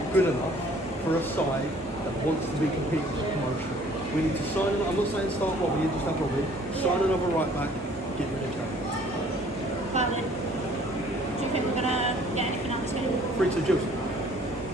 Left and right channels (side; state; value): both; normal; correlation 0.56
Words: good enough for a side that wants to be competing for promotion. We need to sign another, I'm not saying start Robbie, just have Robbie. Sign another right back, get rid of January. Valid. Do you think we're going to get anything out of this game? 3-2 Gills.